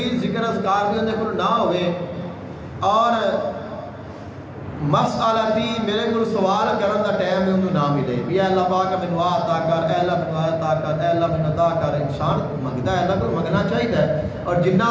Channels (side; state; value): both; identical; correlation 1.00